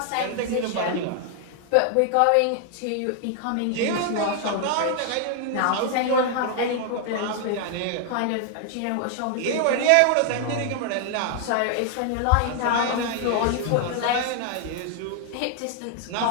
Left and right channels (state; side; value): different; both; correlation 0.00